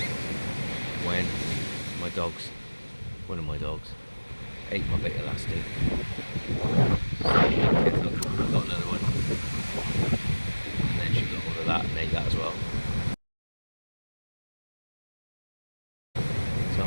when one of my dogs ate my bait elastic. I got another one, and then she got hold of that and ate that as well. So I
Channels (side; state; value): both; inverted; correlation -1.00